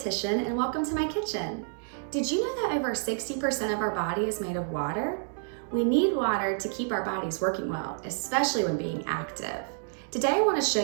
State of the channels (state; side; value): silent; left; 59 dB below the other